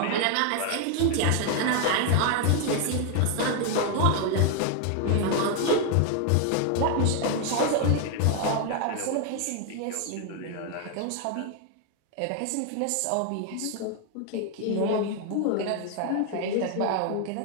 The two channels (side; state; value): both; different; correlation 0.00